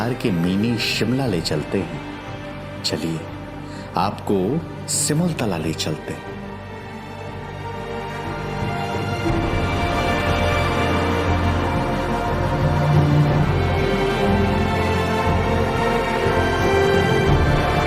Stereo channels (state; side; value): identical; both; correlation 1.00